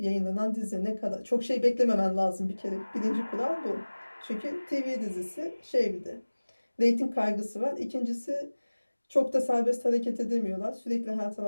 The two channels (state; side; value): inverted; both; correlation -1.00